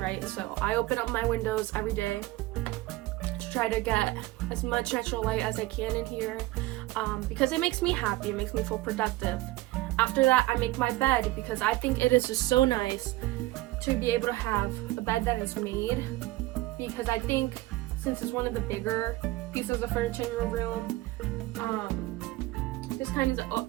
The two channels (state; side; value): quieter; left; 18.6 dB